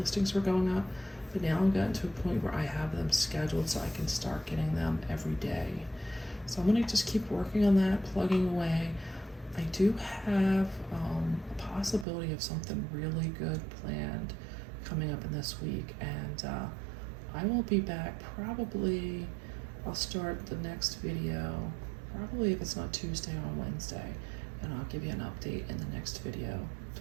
were going up, but now I've gotten to a point where I have them scheduled so I can start getting them every day. So I'm gonna just keep working on that, plugging away. I do have a possibility of something really good planned coming up in this week, and I will be back probably, I'll start the next video, probably if it's not Tuesday, on Wednesday, and I'll give you an update in the next video to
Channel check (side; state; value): left; drops out; at 12.1 s